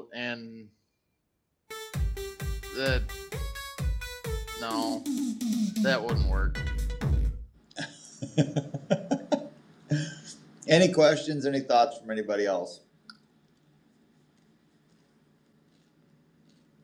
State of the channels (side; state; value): both; identical; correlation 1.00